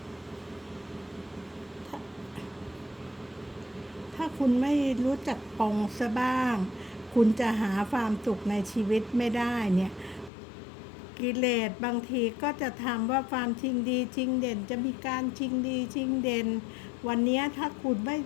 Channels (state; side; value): drops out; right; at 10.3 s